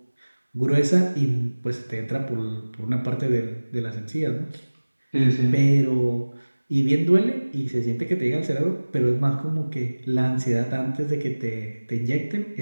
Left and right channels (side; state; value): both; inverted; correlation -1.00